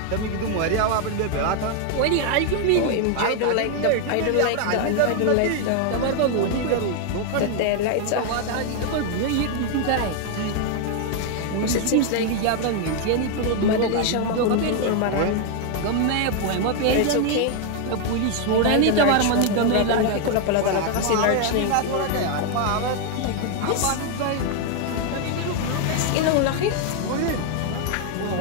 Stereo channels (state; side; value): different; both; correlation 0.01